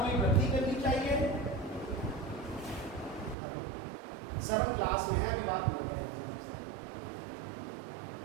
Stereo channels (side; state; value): left; drops out; at 3.4 s